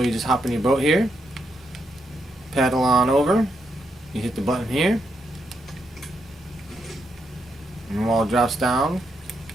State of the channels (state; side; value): normal; both; correlation 0.80